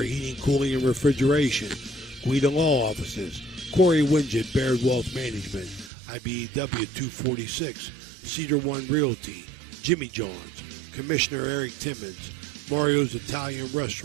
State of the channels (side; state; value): left; drops out; at 5.9 s